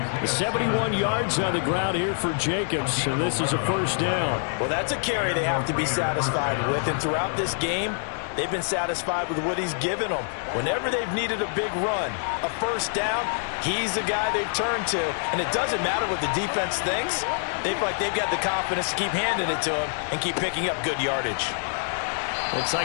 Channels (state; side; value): silent; right; digital silence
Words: 71 yards on the ground here for Jacobs, and this is a 1st down. Well, that's a carry they have to be satisfied with, and throughout this game, they've been satisfied with what he's given them. Whenever they've needed a big run, a 1st down, he's the guy they've turned to. And it doesn't matter what the defense thinks. They feel like they've got the confidence to keep handing it to him and keep picking up good yardage. Looks